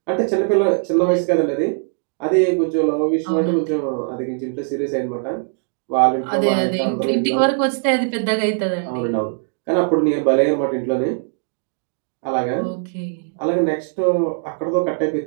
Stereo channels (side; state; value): left; silent; digital silence